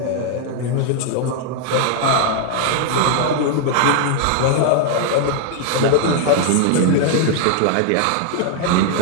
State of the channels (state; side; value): different; both; correlation 0.00